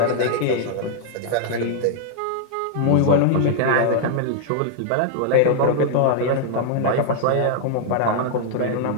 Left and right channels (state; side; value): different; both; correlation 0.00